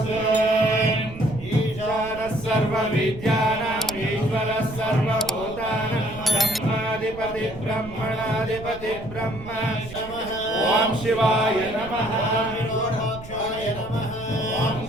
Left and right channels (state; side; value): noise; right; rumble, 14 dB below the sound